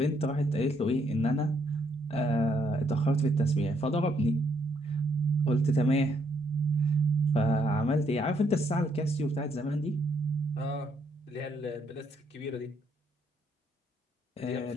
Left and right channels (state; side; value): normal; both; correlation 0.72